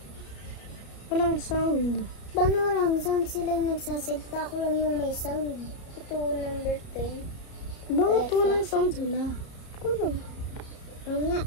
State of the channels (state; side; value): late; right; 33 ms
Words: Walang sound. Paano walang sound? Sila yung nagsasalita. Ako lang yung may sound. Ito, number 10. Bakit walang sound sila? Kulo. Oo nga.